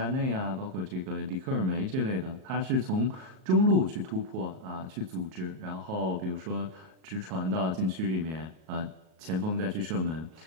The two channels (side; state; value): left; late; 38 ms